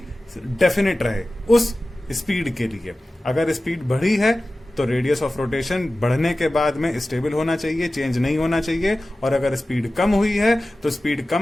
डेफिनेट रहे उस स्पीड के लिए. अगर स्पीड बढ़ी है तो रेडियस ऑफ रोटेशन बढ़ने के बाद में स्टेबल होना चाहिए, चेंज नहीं होना चाहिए. और अगर स्पीड कम हुई है तो स्पीड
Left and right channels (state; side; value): normal; both; correlation 0.96